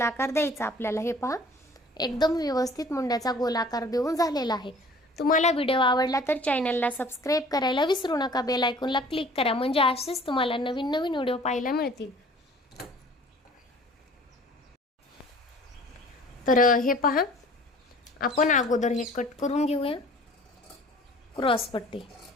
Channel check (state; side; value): normal; both; correlation 0.50